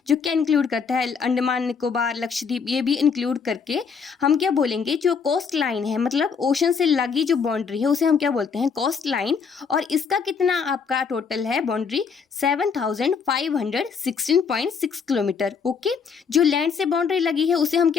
जो क्या इंक्लूड करता है, अंडमान निकोबार, लक्षद्वीप, ये भी इंक्लूड करके हम क्या बोलेंगे, जो कोस्ट लाइन है, मतलब ओशन से लगी जो बाउंड्री है उसे हम क्या बोलते हैं, कोस्ट लाइन। और इसका कितना आपका टोटल है बाउंड्री, 7,516.6 किलोमीटर। ओके, जो लैंड से बाउंड्री लगी है उसे हम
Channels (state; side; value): quieter; right; 5.9 dB